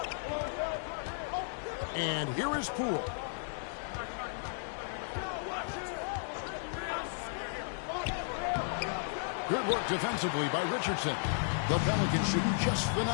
And here is Poole. Good work defensively by Richardson. The Pelicans shooting just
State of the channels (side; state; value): right; silent; digital silence